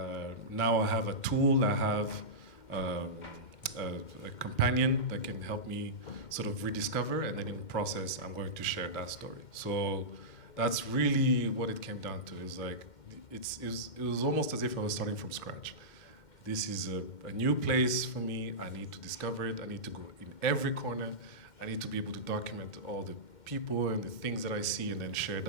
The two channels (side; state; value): right; late; 2.1 ms